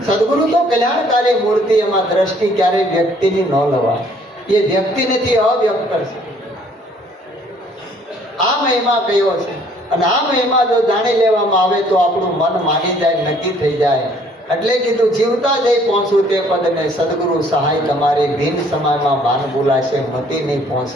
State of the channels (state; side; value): normal; both; correlation 0.60